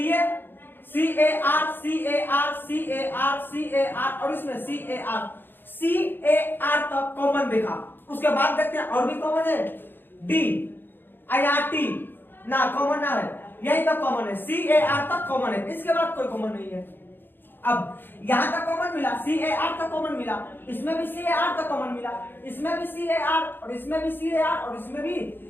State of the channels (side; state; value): right; late; 0.098 ms